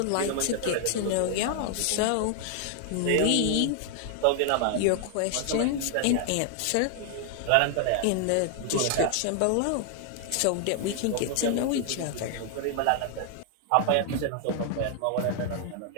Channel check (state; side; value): different; both; correlation 0.00